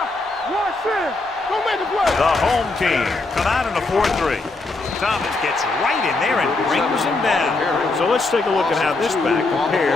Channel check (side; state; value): right; quieter; 3.3 dB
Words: Watch it. Don't make the play. The home team come out in a 4-3. Thomas gets right in there and brings him down. So let's take a look at how this back